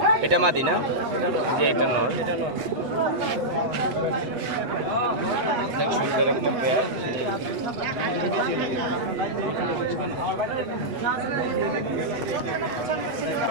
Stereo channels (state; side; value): late; left; 8.1 ms